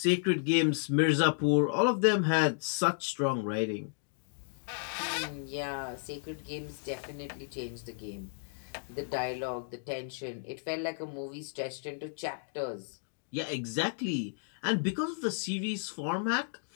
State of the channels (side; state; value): right; silent; digital silence